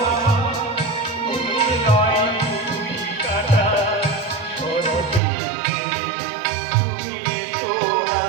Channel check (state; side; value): drops out; left; at 5.2 s